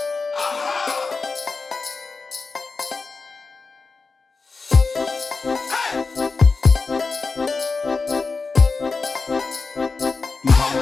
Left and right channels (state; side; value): quieter; right; 4.3 dB